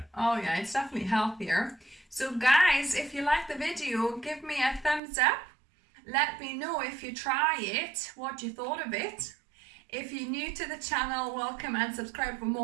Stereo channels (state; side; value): drops out; left; at 5.0 s